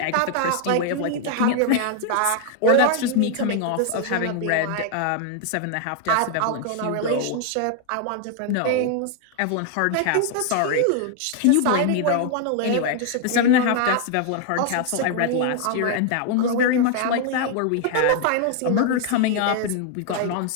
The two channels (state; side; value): different; both; correlation 0.00